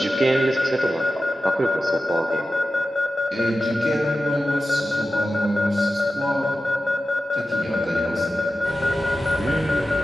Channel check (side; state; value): both; normal; correlation 0.93